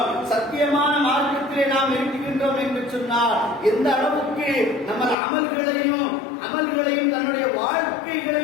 சத்தியமான மார்க்கத்திலே நாம் இருக்கின்றோம் என்று சொன்னால் எந்த அளவுக்கு நம்ம அமல்களையும் தன்னுடைய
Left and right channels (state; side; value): drops out; right; at 5.2 s